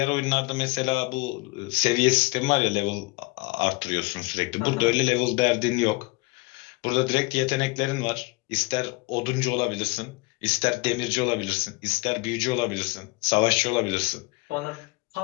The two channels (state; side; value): quieter; right; 25.2 dB